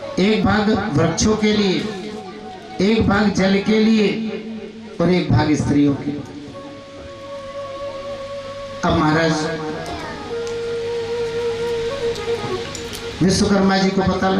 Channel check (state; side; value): identical; both; correlation 1.00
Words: एक भाग वृक्षों के लिए, एक भाग जल के लिए और एक भाग स्त्रियों के लिए। अब महाराज विश्वकर्मा जी को पता